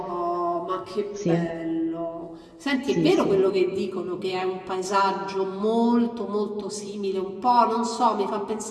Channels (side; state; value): both; identical; correlation 1.00